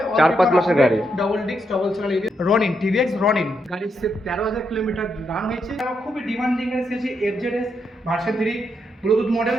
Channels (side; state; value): both; normal; correlation 0.80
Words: 4-5 মাসের গাড়ি, double disc double channel ABS Ronin TVS Ronin গাড়ি সির্ফ 13000 কিলোমিটার রান হয়েছে। খুবই ডিমান্ডিং গাড়ি সিএচএ FZS version 3 Bluetooth model,